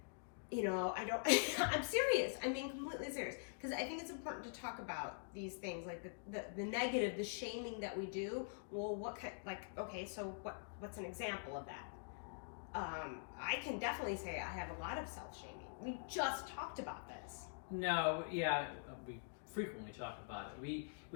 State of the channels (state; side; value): silent; right; digital silence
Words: I don't, I'm serious. I'm being completely serious. Because I think it's important to talk about these things, like the negative, the shaming that we do. Well, so what's an example of that? I can definitely say I have a lot of self-shaming. We just talked about this. No, yeah, we frequently talk about it.